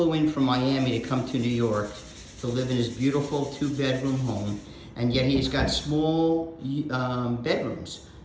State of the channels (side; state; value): both; identical; correlation 1.00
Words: in from Miami to come to New York to live in his beautiful 2-bedroom home, and yet he's got small bedrooms,